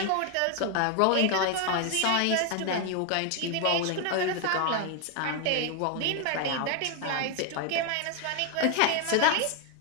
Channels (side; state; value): both; different; correlation 0.01